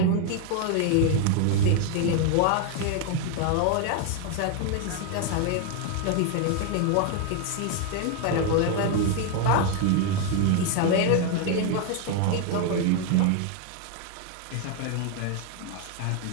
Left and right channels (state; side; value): different; both; correlation 0.01